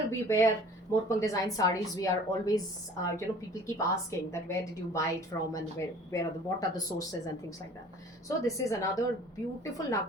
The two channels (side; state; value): both; normal; correlation 0.48